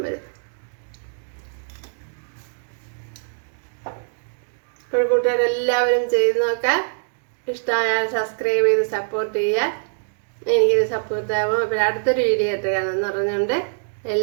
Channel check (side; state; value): left; silent; digital silence